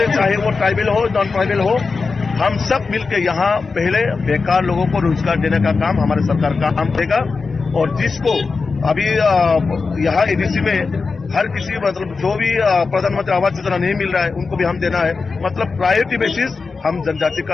चाहे वो ट्राइबल हो नॉन ट्राइबल हो, हम सब मिलकर यहाँ पहले बेकार लोगों को रोजगार देने का काम हमारे सरकार का काम देगा। और जिसको अभी यहाँ एडीसी में हर किसी, मतलब जो भी प्रधानमंत्री आवास योजना नहीं मिल रहा है, उनको भी हम देना है। मतलब प्रायोरिटी बेसिस हम जनजाति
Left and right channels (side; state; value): right; quieter; 4.5 dB